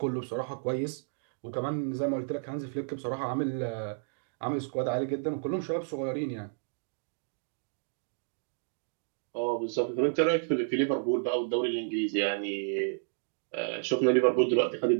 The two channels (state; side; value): silent; left; digital silence